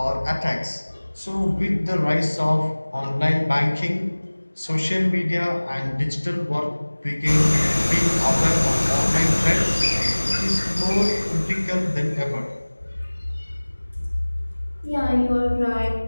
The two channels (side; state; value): both; inverted; correlation -1.00